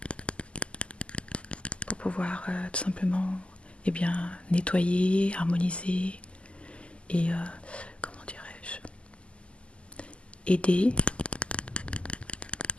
Pour pouvoir tout simplement nettoyer, harmoniser et comment dirais-je, aider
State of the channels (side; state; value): right; late; 0.055 ms